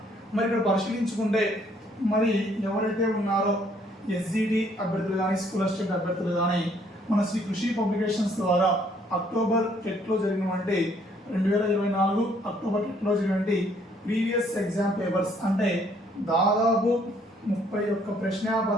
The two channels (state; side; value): normal; both; correlation 0.65